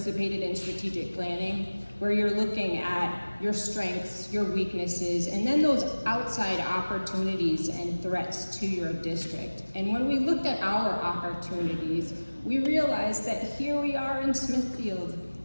in strategic planning, where you're looking at your strengths, your weaknesses, and then those outside opportunities and threats to your district. And when we looked at our opportunities, we realized that here we are in Smithfield,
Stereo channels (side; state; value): both; inverted; correlation -1.00